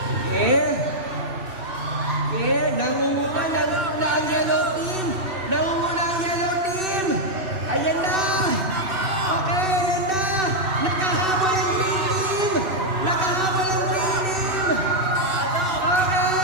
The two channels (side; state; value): left; late; 2.6 ms